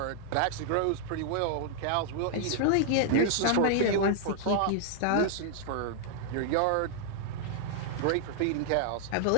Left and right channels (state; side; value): different; both; correlation 0.00